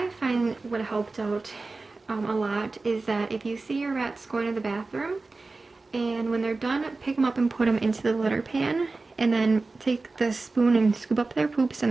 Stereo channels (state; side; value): quieter; left; 3.6 dB